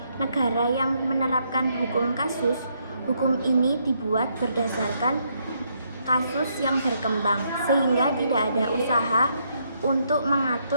negara yang menerapkan hukum kasus, hukum ini dibuat berdasarkan kasus yang berkembang sehingga tidak ada usaha untuk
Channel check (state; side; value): inverted; both; correlation -0.74